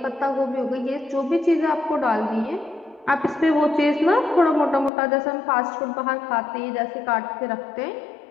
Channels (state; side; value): drops out; right; at 4.9 s